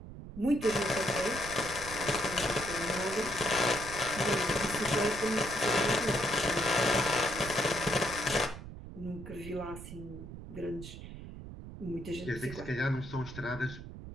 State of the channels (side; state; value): right; noise; rumble, 12 dB below the sound